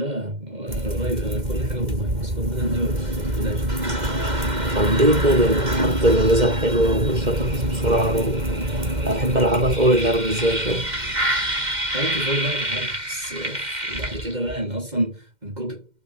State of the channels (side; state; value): left; late; 2.1 ms